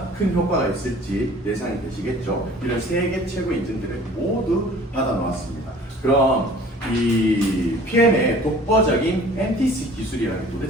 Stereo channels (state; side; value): normal; both; correlation 0.49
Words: 큰 효과가 있을지 예상이 되시겠죠. 이런 세계 최고 인증들을 모두 받아 놓았습니다. 그럼 이 PM의 독보적인 NTC 기술이라는 게